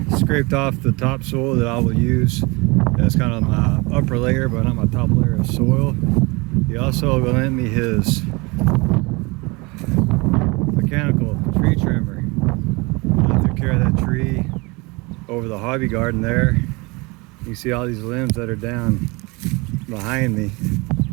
scraped off the topsoil that I will use as kind of my upper layer but not my top layer of soil. He also lent me his mechanical tree trimmer. I took care of that tree over the hobby garden there. You see all these limbs that are down behind me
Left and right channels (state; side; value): quieter; left; 26.2 dB